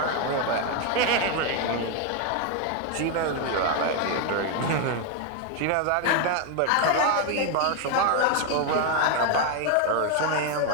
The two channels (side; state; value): both; different; correlation 0.01